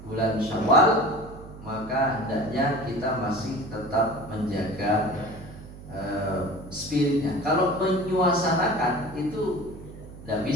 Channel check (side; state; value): right; noise; hum, 15 dB below the sound